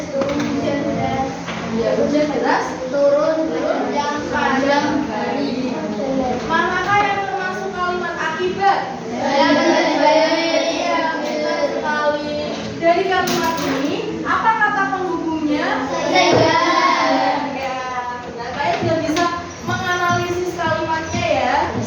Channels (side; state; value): both; identical; correlation 1.00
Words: turun, hujan deras Ya, hujan deras turun sepanjang hari. manakah yang termasuk kalimat akibat? Saya benar-benar Iya, benar sekali. Dari kalimat ini, apa kata penghubungnya? Sehingga. Ya, benar. Kalian sudah bisa menganalisis kalimatnya ya.